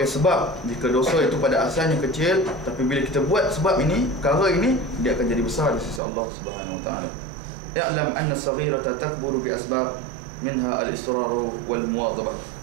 sebab. Jika dosa itu pada asalnya kecil, tapi bila kita buat sebab ini, perkara ini, dia akan jadi besar di sisi Allah Subhanahu wa taala. Ya'lam anna as-saghirata takburu bi asbab minha al-israru wal muwadhabah.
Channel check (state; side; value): drops out; left; at 6.0 s